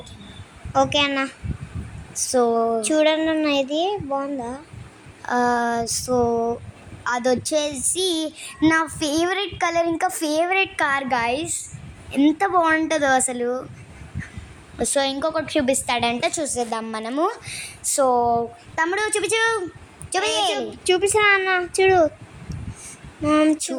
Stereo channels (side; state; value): both; identical; correlation 1.00